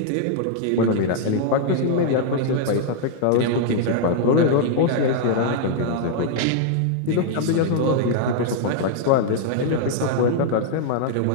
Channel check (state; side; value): different; both; correlation -0.01